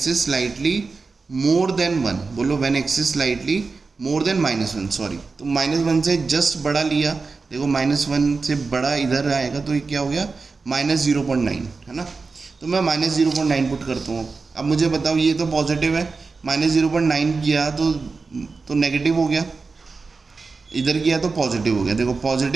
is slightly more than 1, बोलो when x is slightly more than -1, sorry, तो -1 से जस्ट बड़ा लिया, देखो -1 से बड़ा इधर आएगा तो ये क्या हो गया, -0.9, है ना। तो मैं -0.9 पुट करता हूँ। अब मुझे बताओ ये तो पॉजिटिव है, -0.9 किया तो नेगेटिव हो गया, इधर किया तो पॉजिटिव हो गया, देखो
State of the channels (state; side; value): quieter; left; 4.3 dB